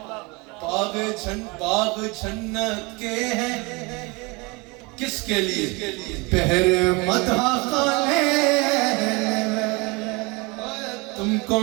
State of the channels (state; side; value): quieter; left; 27.1 dB